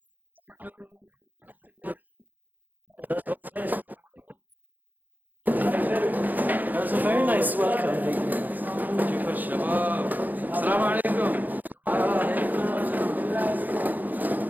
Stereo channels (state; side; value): late; left; 0.084 ms